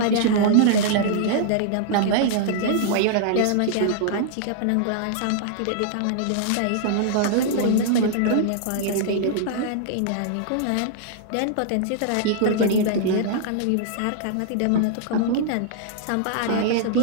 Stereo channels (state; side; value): different; both; correlation -0.01